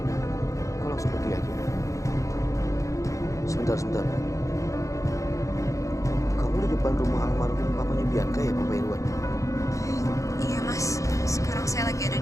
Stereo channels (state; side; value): late; right; 0.15 ms